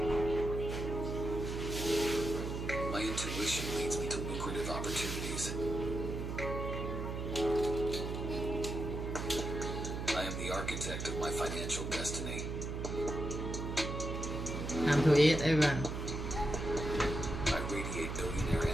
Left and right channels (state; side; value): noise; right; hum, 4 dB below the sound